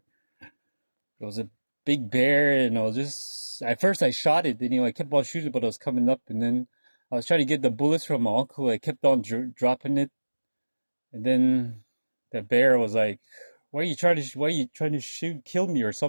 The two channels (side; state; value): both; inverted; correlation -1.00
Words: There was a big bear, and I was just at first I shot it. And, I kept on shooting, but it was coming up, and then I was trying to get the bullets from my uncle. I kept on dropping it, and then the bear was like, "Why are you trying to kill me or